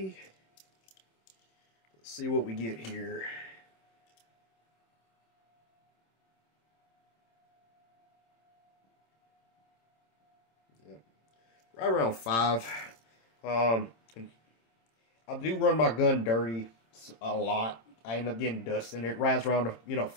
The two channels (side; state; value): right; late; 26 ms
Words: Let's see what we get here. Yep. Right around 5. I do run my gun dirty a lot. I end up getting dust in it. It rides around a, you know,